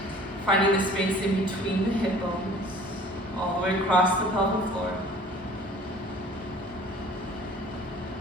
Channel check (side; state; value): both; normal; correlation 0.49